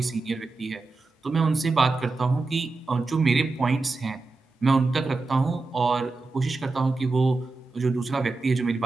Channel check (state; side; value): quieter; left; 3.6 dB